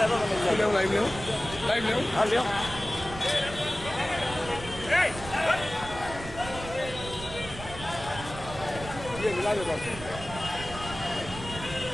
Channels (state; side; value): noise; right; rumble, 12 dB below the sound